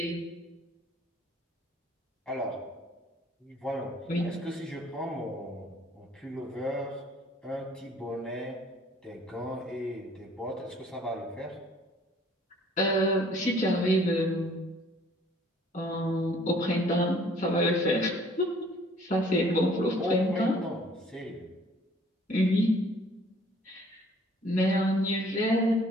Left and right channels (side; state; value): both; normal; correlation 0.57